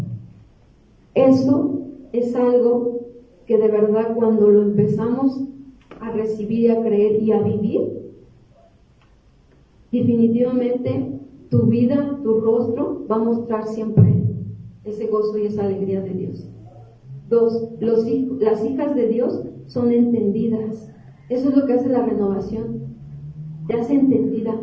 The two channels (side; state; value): both; identical; correlation 1.00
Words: Eso es algo que de verdad cuando lo empezamos a recibir y a creer y a vivir, definitivamente tu vida, tu rostro va a mostrar siempre ese gozo y esa alegría de Dios. 2, las hijas de Dios son entendidas. Eso es lo que hace la renovación. Te hace entendida